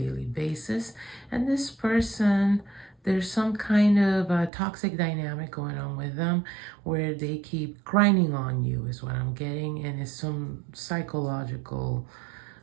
basis. And this person, there's some kind of a toxic dynamic going on with them where they keep grinding on you is what I'm getting, and it's some psychological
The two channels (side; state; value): left; drops out; at 4.5 s